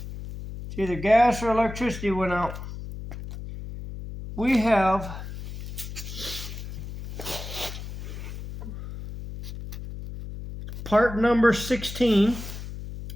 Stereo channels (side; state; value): left; noise; hum, 10 dB below the sound